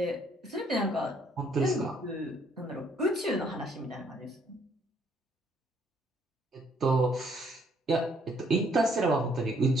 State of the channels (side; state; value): both; normal; correlation 0.66